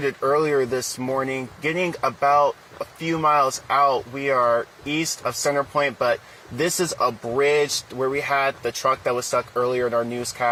earlier this morning, getting about a few miles out. We are east of Center Point, but this is a bridge where we had the truck that was stuck earlier in our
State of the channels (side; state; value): both; identical; correlation 1.00